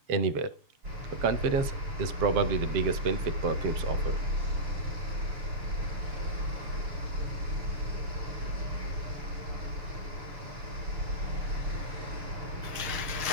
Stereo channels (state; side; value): late; left; 6.9 ms